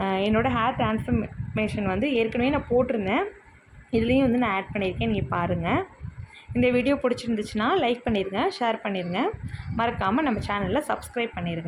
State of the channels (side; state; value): both; identical; correlation 1.00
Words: என்னோடய ஹேர் ட்ரான்ஸ்ஃபர்மேஷன் வந்து ஏற்கனவே நான் போட்டிருந்தேன். இதுலேயும் வந்து நான் ஆட் பண்ணியிருக்கேன். நீங்கள் பாருங்கள். இந்த வீடியோ பிடிச்சிருந்துச்சுன்னா லைக் பண்ணிடுங்க, ஷேர் பண்ணிடுங்க. மறக்காமல் நம்ம சேனலில் சப்ஸ்கிரைப்